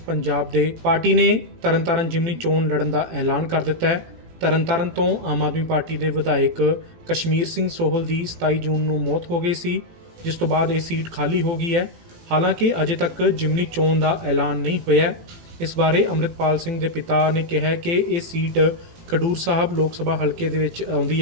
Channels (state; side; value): late; left; 18 ms